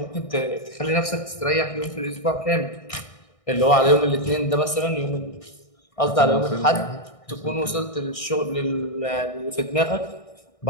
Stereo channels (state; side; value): late; right; 1.6 ms